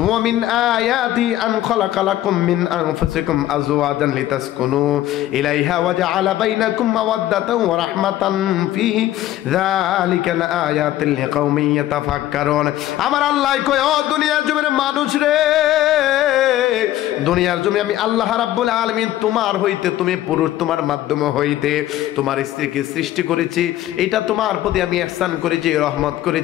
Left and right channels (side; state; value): right; quieter; 13.9 dB